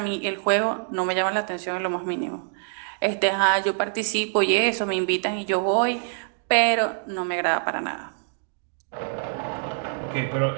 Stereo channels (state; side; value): silent; left; 62 dB below the other